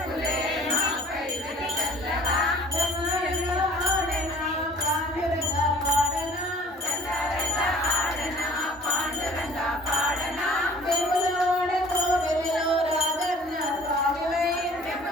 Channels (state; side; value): normal; both; correlation 0.52